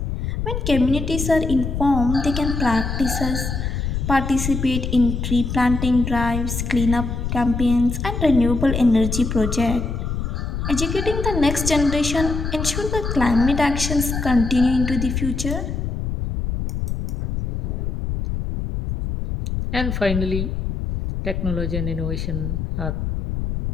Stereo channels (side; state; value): left; noise; rumble, 3 dB below the sound